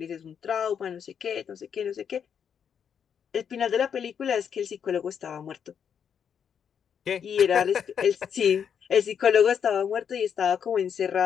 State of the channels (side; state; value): right; quieter; 7.7 dB